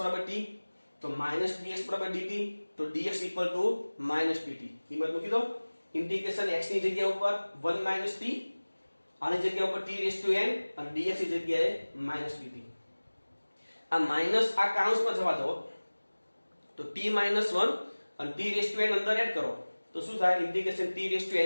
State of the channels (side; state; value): both; inverted; correlation -1.00